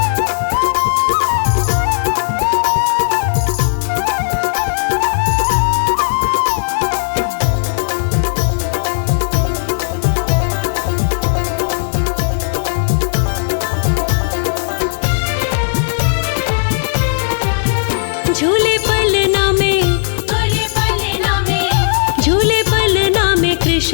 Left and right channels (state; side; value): silent; right; digital silence